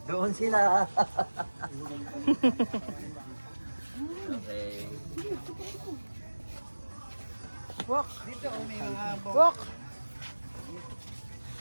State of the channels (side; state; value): both; inverted; correlation -1.00